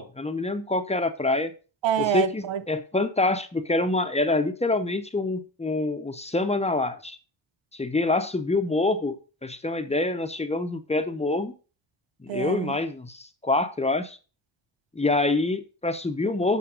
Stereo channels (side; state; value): both; normal; correlation 0.34